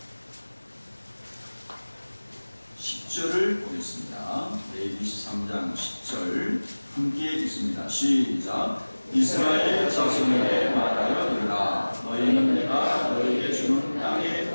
10절을 보겠습니다. 레위기 23장 10절 함께 읽습니다. 시작. 이스라엘 자손에게 말하여 이르라. 너희는 내가 너희에게 주는 땅에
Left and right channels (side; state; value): both; inverted; correlation -1.00